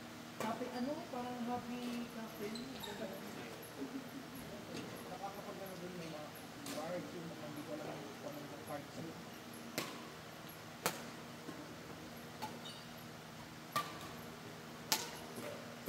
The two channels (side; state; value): both; identical; correlation 1.00